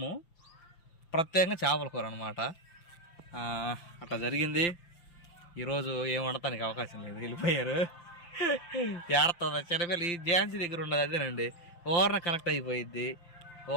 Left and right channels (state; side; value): late; right; 5.8 ms